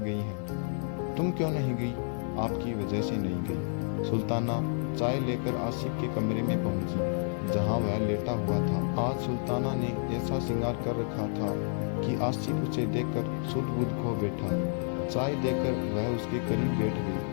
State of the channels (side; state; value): right; silent; 58 dB below the other